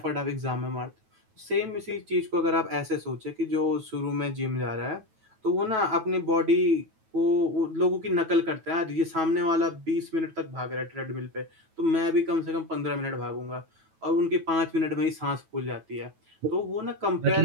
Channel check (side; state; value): left; late; 9.2 ms